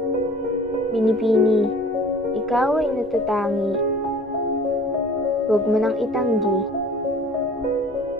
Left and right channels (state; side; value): normal; both; correlation 0.47